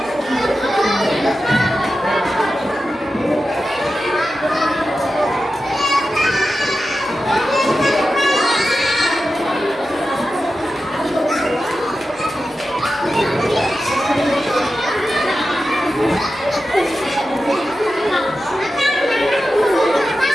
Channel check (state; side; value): normal; both; correlation 0.92